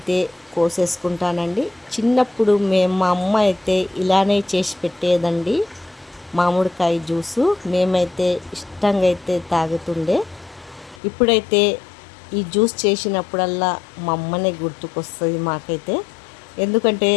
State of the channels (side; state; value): right; drops out; at 11.0 s